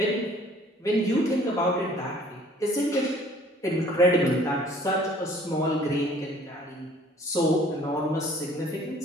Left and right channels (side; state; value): both; normal; correlation 0.55